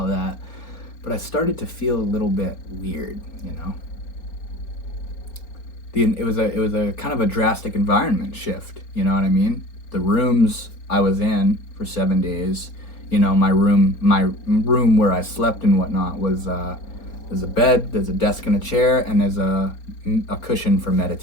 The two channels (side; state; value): right; late; 4.3 ms